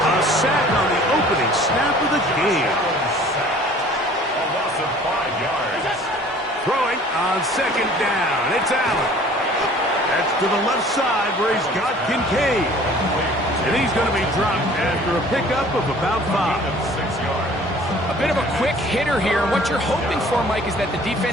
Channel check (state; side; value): normal; both; correlation 0.51